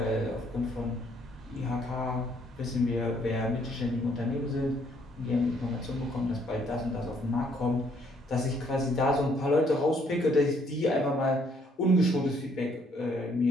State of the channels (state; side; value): normal; both; correlation 0.67